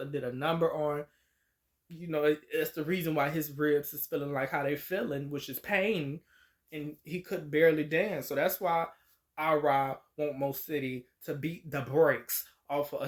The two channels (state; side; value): identical; both; correlation 1.00